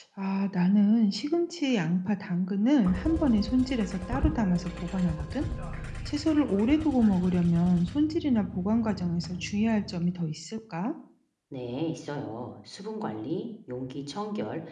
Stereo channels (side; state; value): both; identical; correlation 1.00